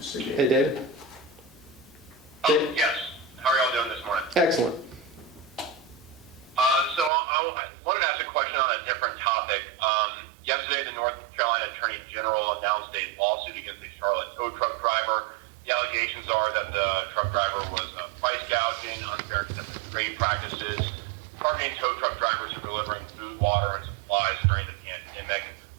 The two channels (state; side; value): drops out; left; at 7.1 s